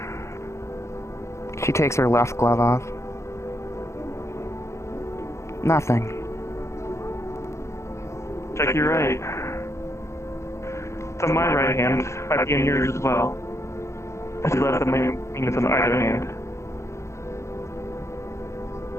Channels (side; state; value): right; late; 0.14 ms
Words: She takes her left glove off. Nothing. Check your right. It's on my right hand. Might be in yours as well. If you left, that may mean it's on either hand.